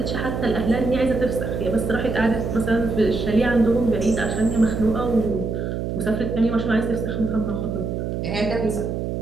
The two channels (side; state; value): right; noise; hum, 3 dB below the sound